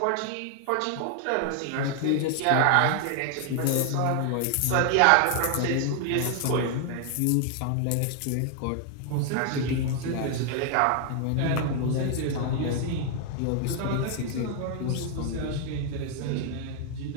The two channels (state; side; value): different; both; correlation 0.00